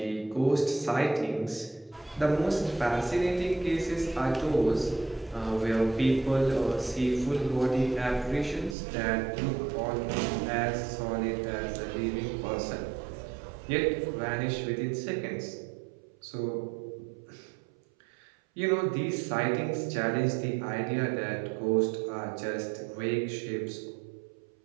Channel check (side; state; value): left; drops out; at 8.8 s